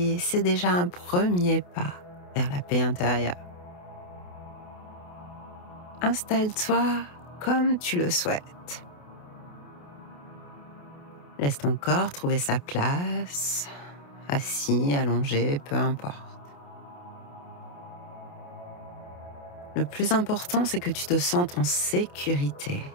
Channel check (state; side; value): late; right; 28 ms